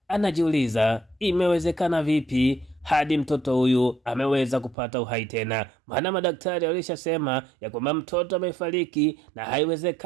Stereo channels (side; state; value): left; drops out; at 4.8 s